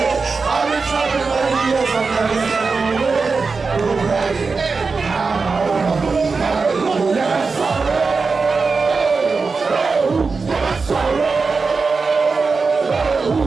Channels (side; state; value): left; quieter; 4.5 dB